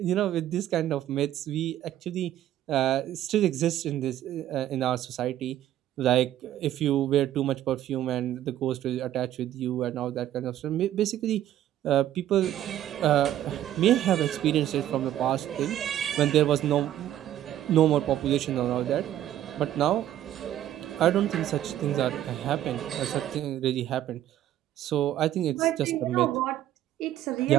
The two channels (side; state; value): left; quieter; 12.3 dB